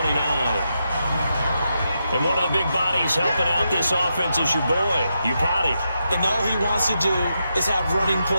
And one of the big bodies helping out this offense is your boy, Upati. And all he wants to do is have running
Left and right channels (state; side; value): inverted; both; correlation -0.85